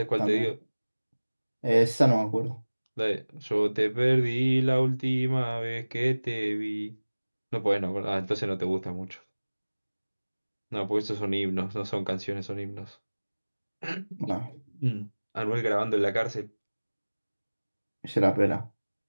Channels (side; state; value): both; inverted; correlation -1.00